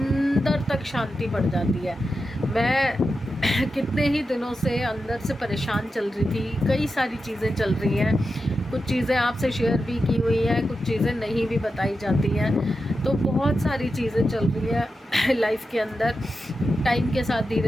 तक शांति बढ़ जाती है। मैं कितने ही दिनों से अंदर से परेशान चल रही थी, कई सारी चीज़ें चल रही हैं, कुछ चीज़ें आपसे शेयर भी की हुई हैं, कुछ चीज़ें नहीं भी बताई जाती हैं, तो बहुत सारी चीज़ें चल रही हैं लाइफ के अंदर। टाइम के साथ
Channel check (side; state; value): both; normal; correlation 0.90